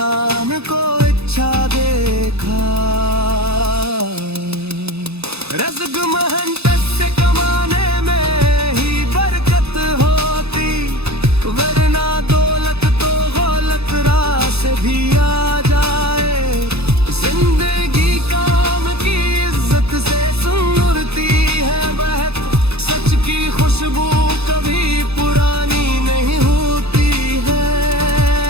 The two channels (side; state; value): left; late; 0.79 ms